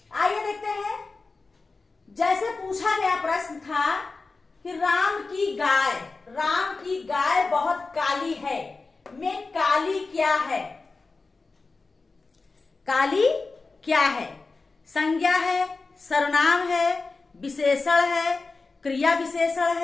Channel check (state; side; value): quieter; right; 3.9 dB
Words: आइए देखते हैं। जैसे पूछा गया प्रश्न था कि राम की गाय बहुत काली है, में काली क्या है? काली क्या है? संज्ञा है, सर्वनाम है, विशेषण है, क्रिया विशेषण